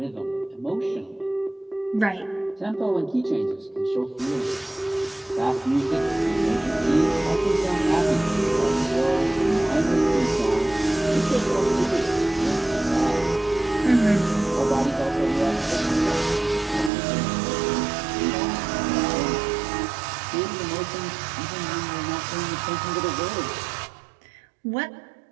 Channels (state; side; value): drops out; left; at 16.9 s